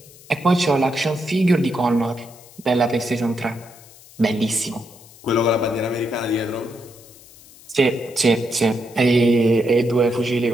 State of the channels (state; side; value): noise; left; hiss, 23 dB below the sound